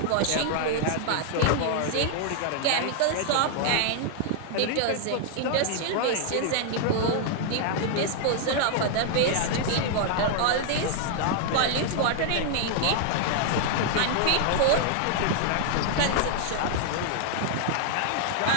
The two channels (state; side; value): different; both; correlation 0.00